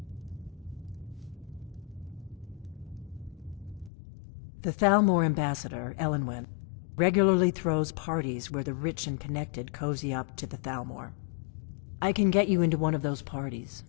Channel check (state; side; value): drops out; right; at 3.9 s